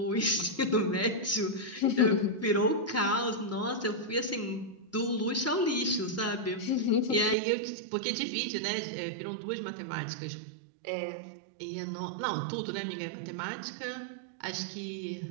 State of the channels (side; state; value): left; drops out; at 7.4 s